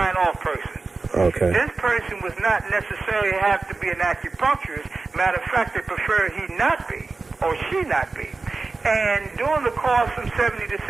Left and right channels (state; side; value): quieter; left; 3.9 dB